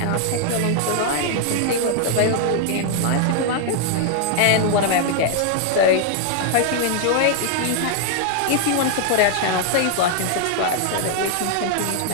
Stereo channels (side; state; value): both; different; correlation 0.00